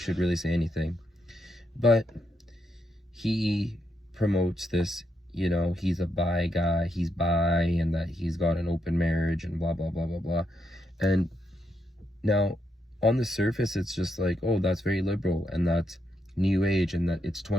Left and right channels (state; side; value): normal; both; correlation 0.81